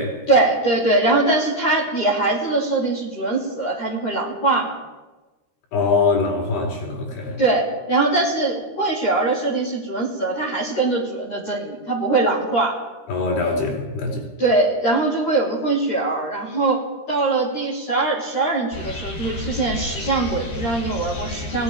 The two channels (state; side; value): late; right; 13 ms